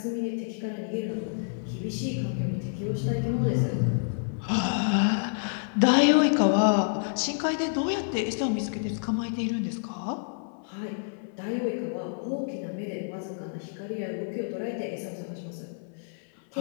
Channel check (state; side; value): silent; right; 59 dB below the other